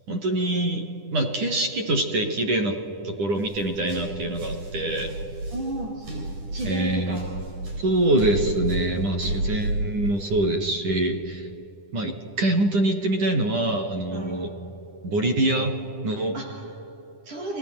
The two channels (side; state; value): left; late; 10 ms